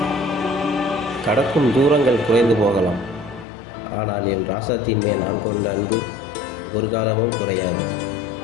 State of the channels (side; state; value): right; drops out; at 3.5 s